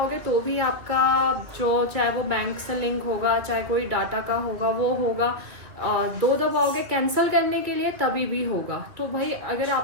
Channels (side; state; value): left; late; 2.7 ms